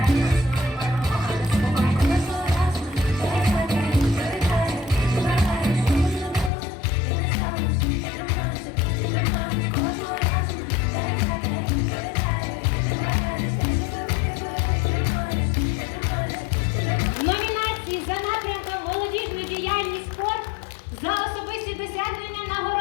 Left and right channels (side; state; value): right; drops out; at 6.5 s